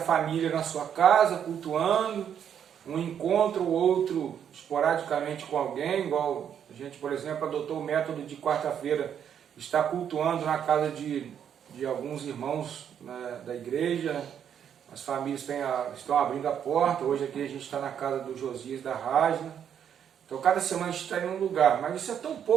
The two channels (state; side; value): quieter; left; 8.7 dB